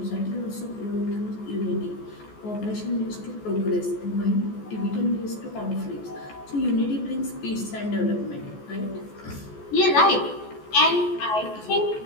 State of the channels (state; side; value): late; right; 14 ms